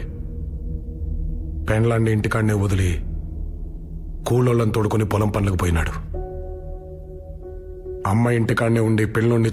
పెండ్లాన్ని ఇంటికాడనే వదిలి కూలోళ్ళని తోడుకుని పొలం పనులకు పోయినాడు. అమ్మ ఇంటికాడనే ఉండి పిల్లోడిని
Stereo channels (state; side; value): identical; both; correlation 1.00